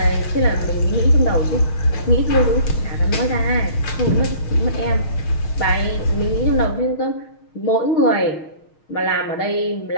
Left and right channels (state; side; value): late; right; 6.4 ms